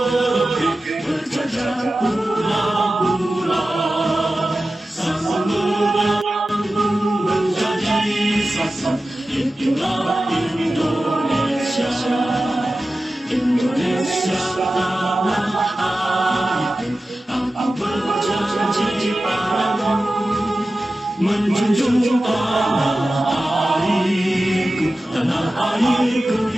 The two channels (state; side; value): normal; both; correlation 0.94